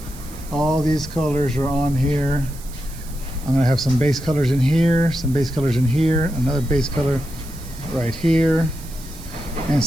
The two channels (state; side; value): noise; right; hiss, 18 dB below the sound